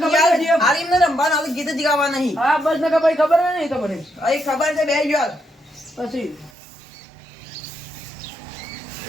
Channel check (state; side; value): drops out; left; at 6.5 s